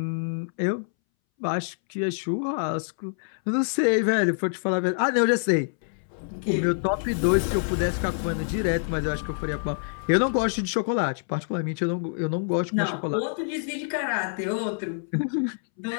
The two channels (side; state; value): right; silent; 61 dB below the other